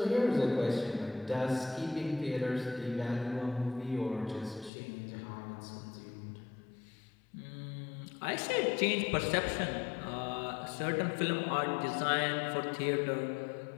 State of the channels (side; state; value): right; drops out; at 4.7 s